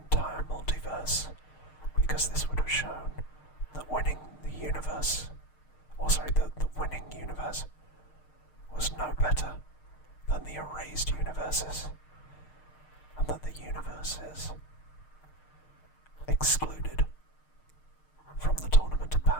multiverse, because this would have shown that winning the universe, the winning universe was no better than the erased universes, and that the universes excluded from the Tournament of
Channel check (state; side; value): late; right; 6.5 ms